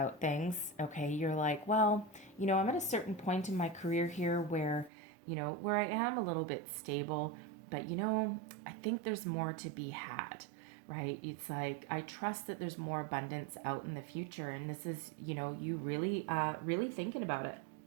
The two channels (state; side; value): drops out; left; at 4.9 s